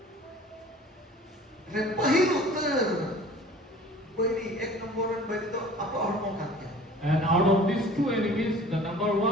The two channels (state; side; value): normal; both; correlation 0.46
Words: repahil utter beri ek nomor beri itu apa hormo katnya And out of these two enemies, the number